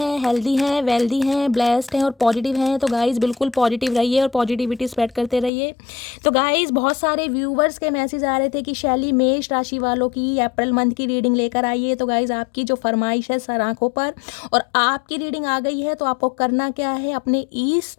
हेल्दी हैं, वेल्दी हैं, ब्लेस्ड हैं और पॉजिटिव हैं। तो गाइस बिल्कुल पॉजिटिव रहिए और पॉजिटिविटी स्प्रेड करते रहिए। तो गाइस बहुत सारे व्यूवर्स के मैसेज आ रहे थे कि शैली मेष राशि वालों की अप्रैल मंथ की रीडिंग लेकर आइए। तो गाइस आपकी जो फरमाइश है सर आंखों पर और आपकी रीडिंग आ गई है। तो आपको करना क्या है, अपने ईस्ट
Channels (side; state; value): right; drops out; at 5.5 s